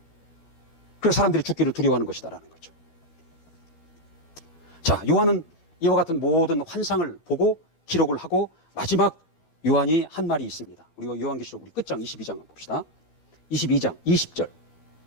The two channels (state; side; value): late; right; 12 ms